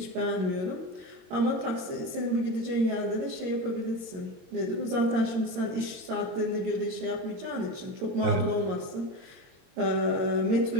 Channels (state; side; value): late; left; 22 ms